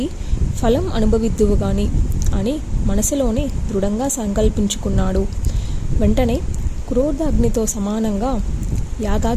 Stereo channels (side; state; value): both; identical; correlation 1.00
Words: ఫలం అనుభవిద్దువు గాని అని మనసులోనే దృఢంగా సంకల్పించుకున్నాడు. వెంటనే క్రోధాగ్నితో సమానంగా